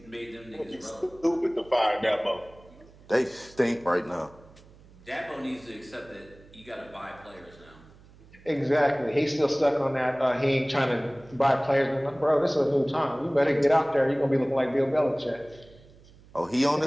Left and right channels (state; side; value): noise; right; hum, 24 dB below the sound